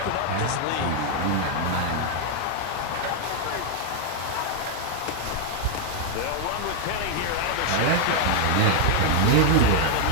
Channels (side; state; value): both; different; correlation 0.00